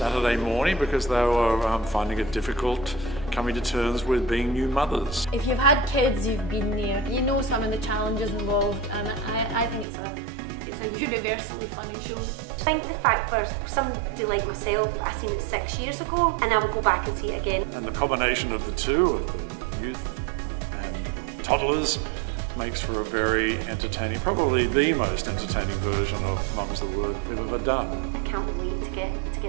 morning because they were finding it difficult coming to terms with being new mothers. If you've had kids, you've been there, you know some of the challenges involved, and I think it's a universally funny show. I think the fact for somebody like myself, I seen it 6 years ago and I would go back and see it again. And the combination of the two, of the youth and toddlers, makes for a very entertaining, probably the most entertaining version of Mum's the Word we've ever done. I can't wait to get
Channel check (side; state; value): left; drops out; at 9.9 s